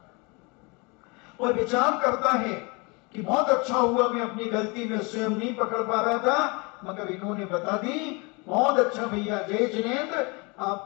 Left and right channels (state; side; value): quieter; right; 28.9 dB